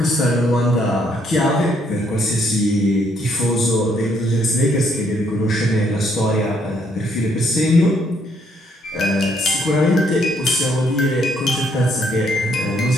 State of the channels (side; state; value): both; normal; correlation 0.70